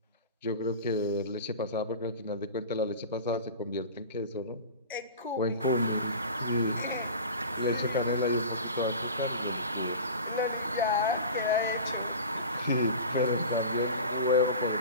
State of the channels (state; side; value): inverted; both; correlation -0.34